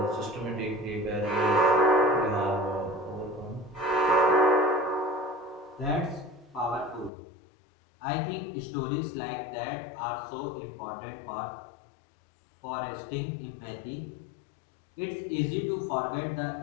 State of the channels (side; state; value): right; drops out; at 7.1 s